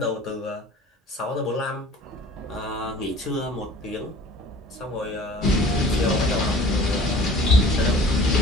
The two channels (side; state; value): both; normal; correlation 0.47